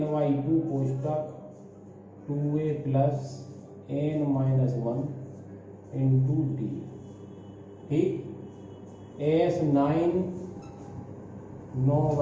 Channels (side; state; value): both; identical; correlation 1.00